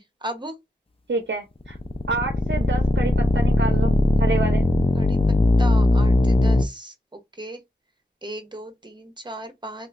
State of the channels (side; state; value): both; normal; correlation 0.85